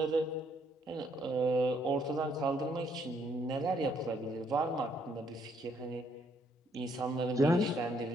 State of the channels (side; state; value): both; normal; correlation 0.70